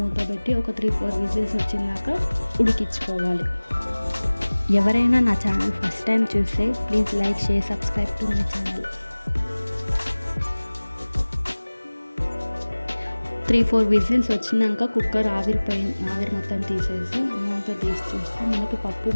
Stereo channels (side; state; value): both; inverted; correlation -1.00